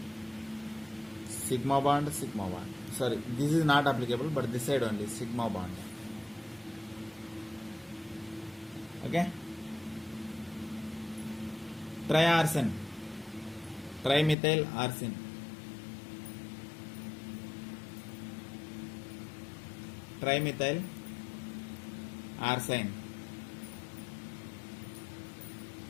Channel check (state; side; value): drops out; right; at 14.4 s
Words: sigma bond. Sorry, this is not applicable, but this side only, sigma bond. Okay, triarsen, trimethyl arsine, trimethyl arsine,